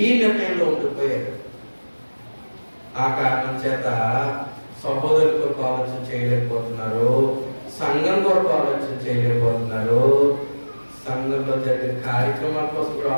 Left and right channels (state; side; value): inverted; both; correlation -1.00